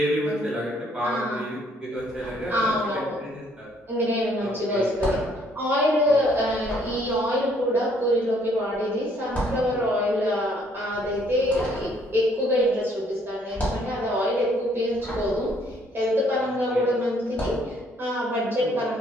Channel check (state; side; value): normal; both; correlation 0.65